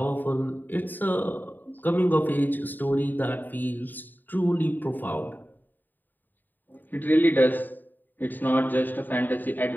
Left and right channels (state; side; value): late; right; 0.089 ms